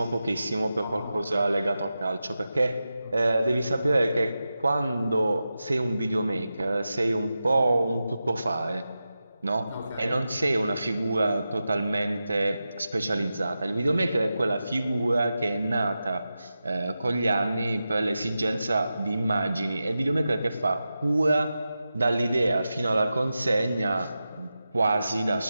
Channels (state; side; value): inverted; both; correlation -0.92